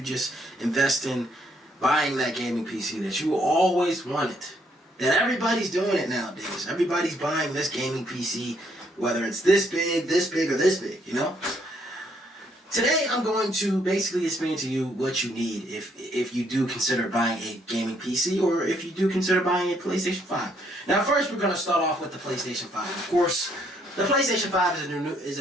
just invest in buying that gaming PC that you always wanted? That everybody's doing it nowadays. Everybody's buying this gaming PC, whether it's this big, or this big, you know? Today, I'm going to basically explain to you what you need if you do consider buying a gaming PC or if you do consider buying a PlayStation 5. Now, first, we're going to start off with the PlayStation 5. Of course, the PlayStation 5 is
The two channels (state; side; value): normal; both; correlation 0.70